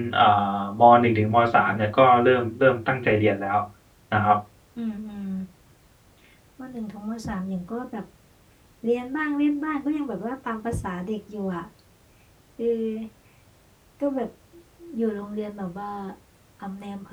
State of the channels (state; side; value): identical; both; correlation 1.00